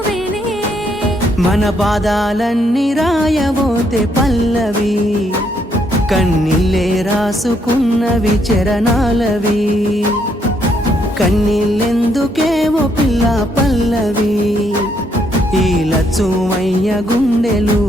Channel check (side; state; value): both; normal; correlation 0.73